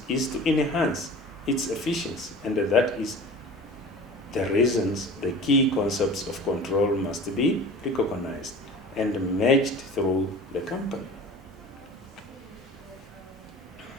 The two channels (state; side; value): normal; both; correlation 0.39